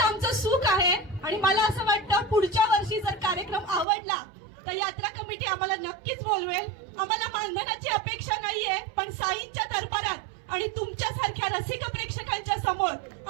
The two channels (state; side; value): drops out; left; at 3.9 s